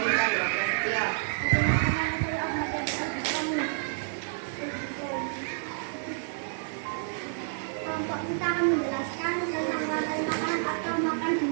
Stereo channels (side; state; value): left; silent; digital silence